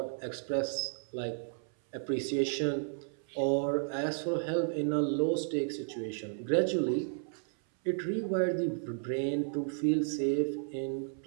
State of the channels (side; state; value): left; silent; 56 dB below the other